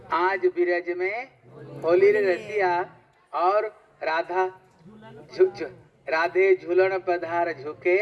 आज बिरज में होली रे रसिया और राधा राधे झूलन पधार झुके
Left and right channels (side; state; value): both; identical; correlation 1.00